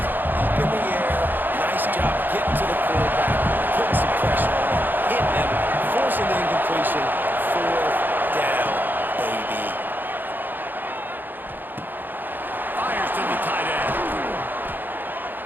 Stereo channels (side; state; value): left; late; 0.090 ms